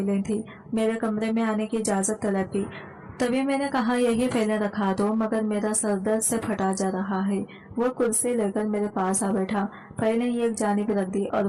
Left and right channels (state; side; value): identical; both; correlation 1.00